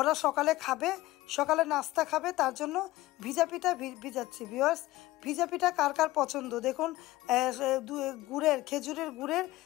সকালে খাবে, সকালে নাস্তা খাবে, তার জন্য ভিজা পিঠা ভিজাচ্ছি ভিউয়ার্স। ভিজা পিঠা কার কার পছন্দ দেখুন। গুড়ের, খেজুরের গুড়ের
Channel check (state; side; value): quieter; right; 17.8 dB